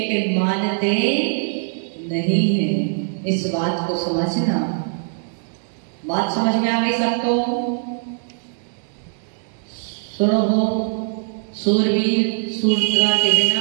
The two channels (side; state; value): left; silent; 58 dB below the other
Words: मानते नहीं है। इस बात को समझना। बात समझ में आ गई सबको? सुनो हो, सूरवीर सूरता के